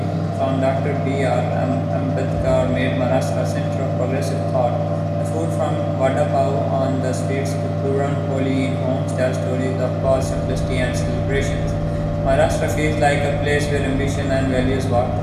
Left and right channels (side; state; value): both; identical; correlation 1.00